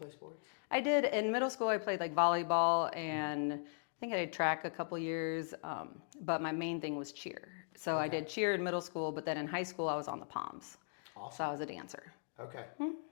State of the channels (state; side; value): silent; right; digital silence